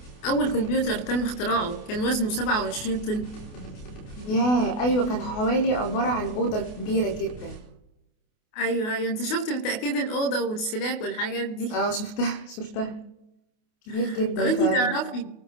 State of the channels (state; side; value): late; right; 28 ms